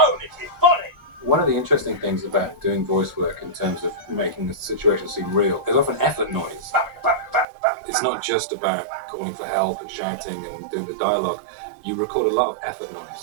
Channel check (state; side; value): drops out; left; at 7.5 s